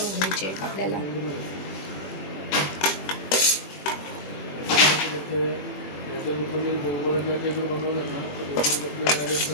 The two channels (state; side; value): late; right; 21 ms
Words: घ्यायची आहे आपल्याला।